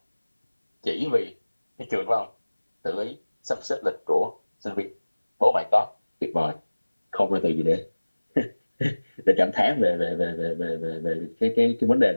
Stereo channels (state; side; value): inverted; both; correlation -1.00